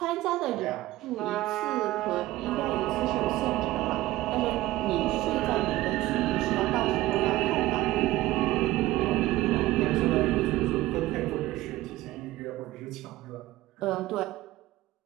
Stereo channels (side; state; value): left; quieter; 16.8 dB